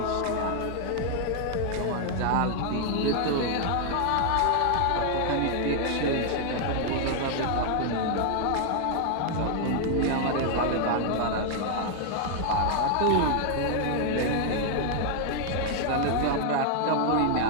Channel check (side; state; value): both; different; correlation 0.00